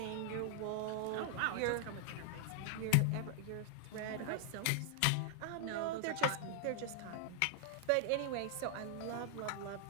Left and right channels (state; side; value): different; both; correlation 0.00